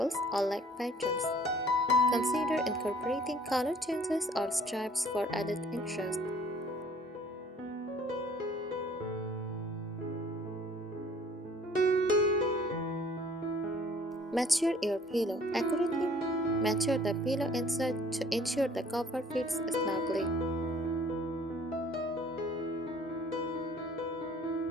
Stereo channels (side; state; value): both; normal; correlation 0.55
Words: or leg patterns. Consider incorporating color changes or stripes for added interest. Mature your pillow. Accurately mature the pillow inside to ensure the cover fits snugly.